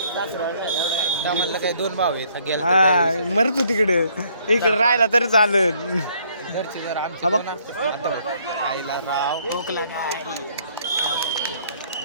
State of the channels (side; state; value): both; inverted; correlation -0.65